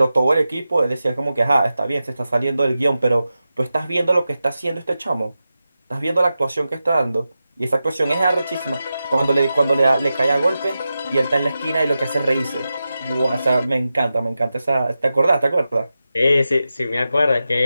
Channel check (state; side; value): inverted; both; correlation -0.92